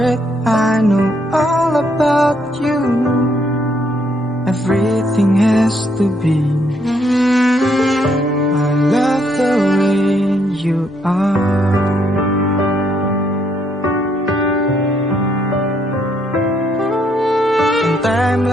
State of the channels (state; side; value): normal; both; correlation 0.72